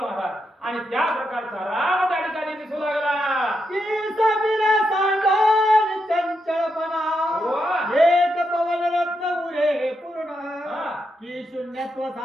आणि त्या प्रकारचा राम त्या ठिकाणी दिसू लागला. की सबिरा सांडोनी चंचलपणा एक पवन रत्न उरे पूर्ण. की शून्यत्व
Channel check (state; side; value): normal; both; correlation 0.83